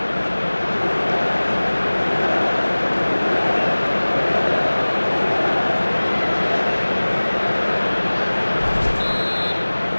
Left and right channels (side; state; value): both; inverted; correlation -1.00